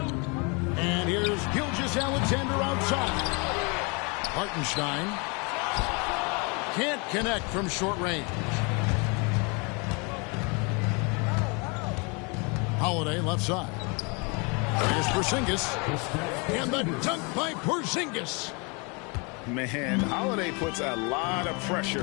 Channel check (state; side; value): quieter; right; 31.5 dB